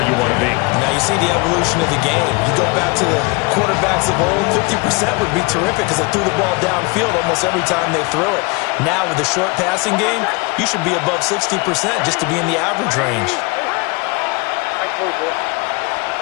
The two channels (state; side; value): quieter; right; 27.1 dB